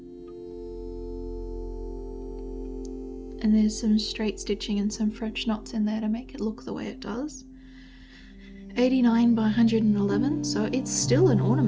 And there's some straight stitching and some French knots in there to make it look the way it does. 89 by 111, so it's still an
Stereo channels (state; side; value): identical; both; correlation 1.00